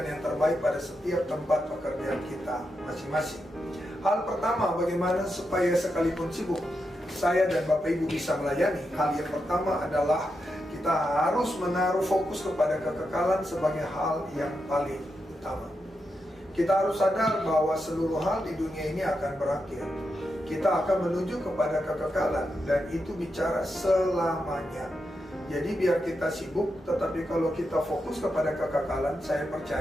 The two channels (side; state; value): both; normal; correlation 0.86